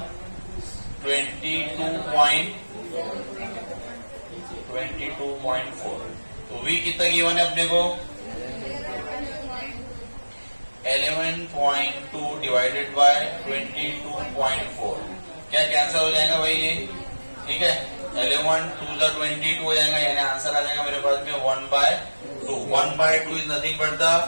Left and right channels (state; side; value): inverted; both; correlation -1.00